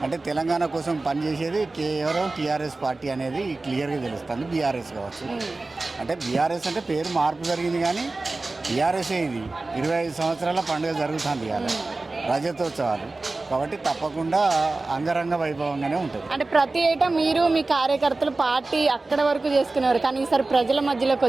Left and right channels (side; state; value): left; quieter; 3.3 dB